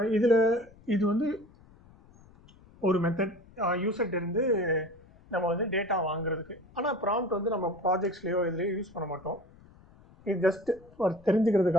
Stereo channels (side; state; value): left; noise; rumble, 25 dB below the sound